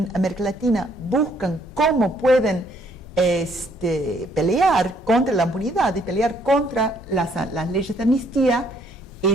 América Latina buscan cómo pueden pelear contra la impunidad y pelear contra las leyes de amnistía,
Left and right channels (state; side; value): normal; both; correlation 0.67